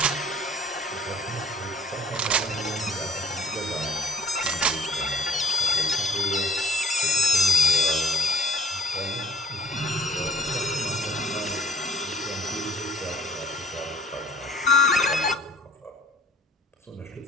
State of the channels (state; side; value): normal; both; correlation 0.56